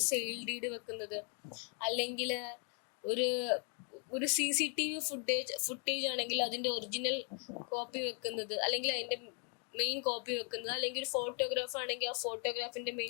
സെയിൽ ഡീഡ് വെക്കുന്നത്, അല്ലെങ്കിൽ ഒരു CCTV ഫുട്ടേജ് ആണെങ്കിൽ അതിന്റെ ഒറിജിനൽ കോപ്പി വെക്കുന്നത്, അല്ലെങ്കിൽ അതിന്റെ മെയിൻ കോപ്പി വെക്കുന്നത്, അല്ലെങ്കിൽ ഒരു ഫോട്ടോഗ്രാഫ് ആണെങ്കിൽ ആ ഫോട്ടോഗ്രാഫിന്റെ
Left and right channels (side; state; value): right; quieter; 38.6 dB